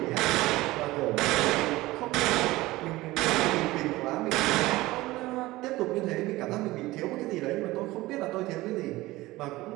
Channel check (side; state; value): left; quieter; 18.8 dB